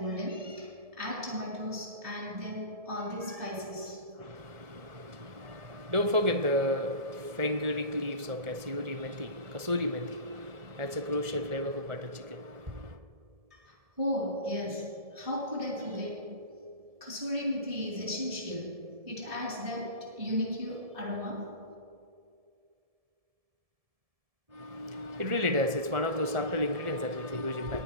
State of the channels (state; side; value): late; left; 1.7 ms